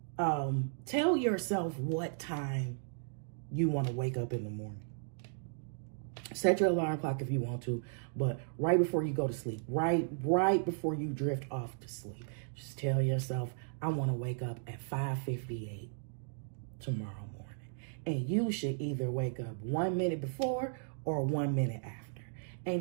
tell yourself what time you want to wake up in the morning. Set your alarm clock if you want to, but right before you go to sleep, right before you drift off to sleep, just tell yourself, I want to wake up at 5:58 tomorrow morning. And you should either wake up 1 minute before or 1 minute after.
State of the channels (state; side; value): silent; left; digital silence